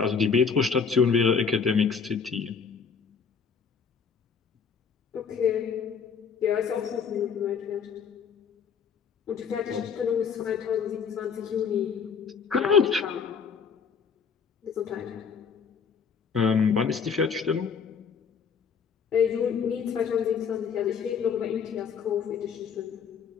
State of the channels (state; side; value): quieter; right; 6.2 dB